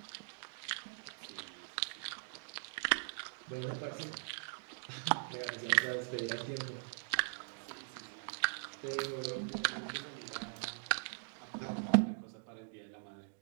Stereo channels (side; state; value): left; silent; digital silence